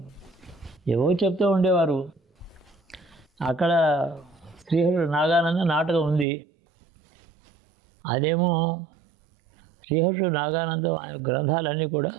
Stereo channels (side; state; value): left; drops out; at 6.2 s